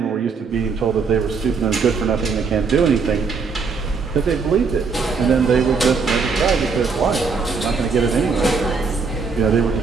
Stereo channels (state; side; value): quieter; left; 5.0 dB